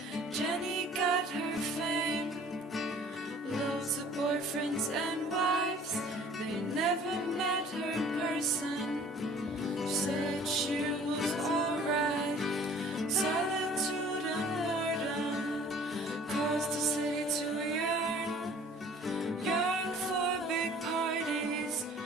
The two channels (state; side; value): normal; both; correlation 0.51